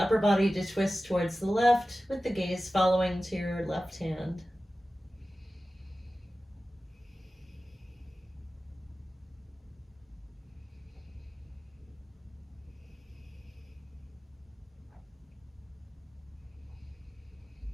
body to twist towards the left with the gaze following to your left hand.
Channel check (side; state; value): both; normal; correlation 0.95